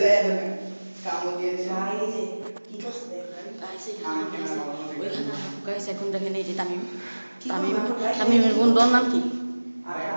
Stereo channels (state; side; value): inverted; both; correlation -1.00